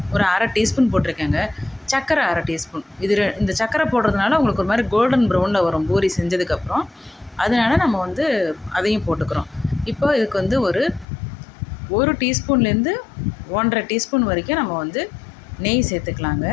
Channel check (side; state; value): right; drops out; at 11.1 s